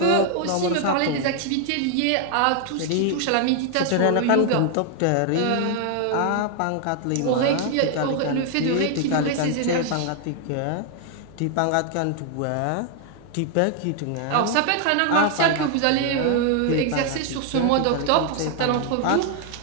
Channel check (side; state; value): both; different; correlation 0.00